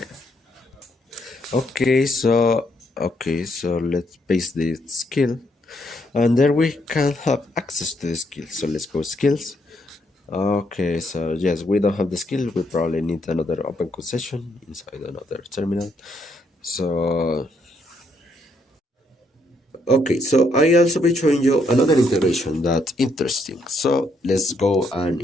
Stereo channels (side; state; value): both; normal; correlation 0.74